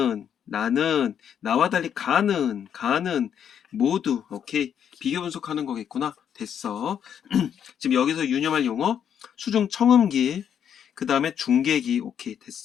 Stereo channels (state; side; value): quieter; right; 8.6 dB